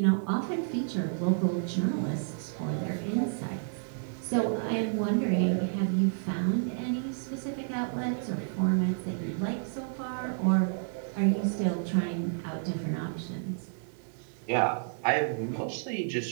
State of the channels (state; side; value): silent; left; digital silence